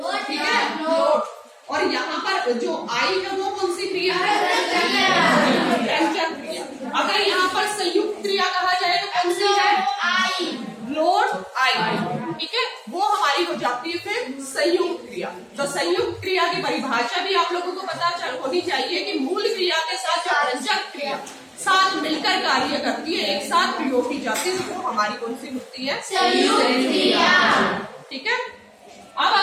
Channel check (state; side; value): identical; both; correlation 1.00